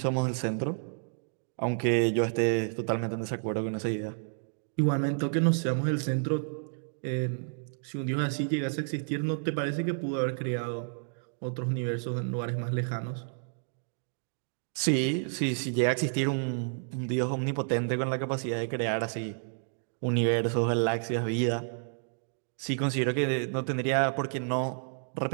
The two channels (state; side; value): silent; left; digital silence